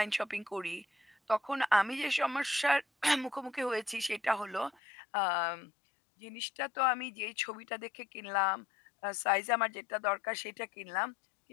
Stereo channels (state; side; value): drops out; right; at 4.8 s